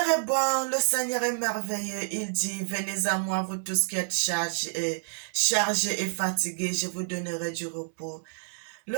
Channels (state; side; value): silent; left; 59 dB below the other